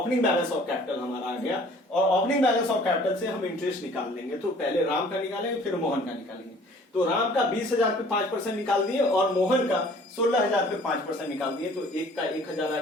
बैलेंस ऑफ कैपिटल हमारा आ गया, और ओपनिंग बैलेंस ऑफ कैपिटल से हम इंटरेस्ट निकाल लेंगे। तो पहले राम का निकालेंगे, फिर मोहन का निकालेंगे। तो राम का 20,000 पे 5% निकाल दिए, और मोहन का 16,000 पे 5% निकाल दिए। तो एक का 1,000 आ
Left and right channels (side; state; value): both; normal; correlation 0.53